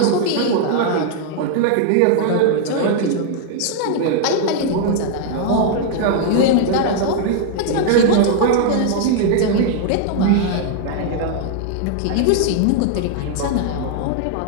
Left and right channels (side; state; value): both; different; correlation 0.00